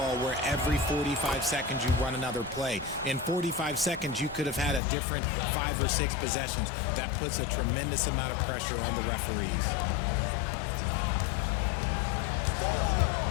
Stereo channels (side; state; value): right; drops out; at 4.8 s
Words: where every 45 seconds you run another play. In 45 seconds, you could have had a different 5 or 6 possessions. That puts a tremendous amount of pressure on the referees.